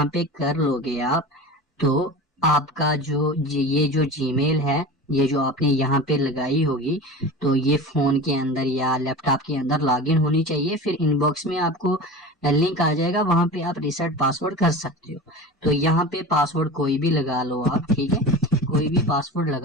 पे कर लोगे आप, तो आपका जो ये जो जीमेल है, ये जो आपने यहाँ पे लगाई होगी, तो ये फोन के अंदर या लैपटॉप के अंदर लॉगिन होनी चाहिए। फिर इनबॉक्स में आपको लिंक आ जाएगा, वहां पे आप रिसेट पासवर्ड कर सकते हो। तो यहाँ पे पासवर्ड कोई भी लगा लो आप, ठीक है, कोई भी पासवर्ड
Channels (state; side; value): normal; both; correlation 0.32